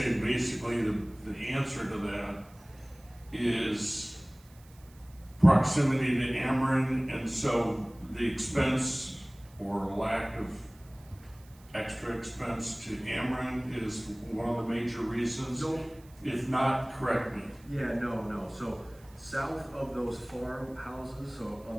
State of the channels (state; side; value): noise; right; hiss, 27 dB below the sound